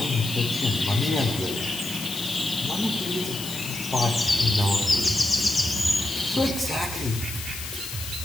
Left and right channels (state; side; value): noise; left; hiss, 8 dB below the sound